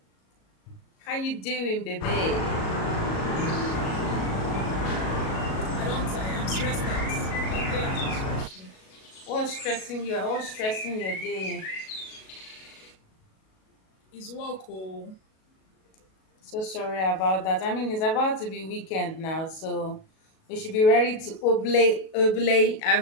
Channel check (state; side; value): late; right; 37 ms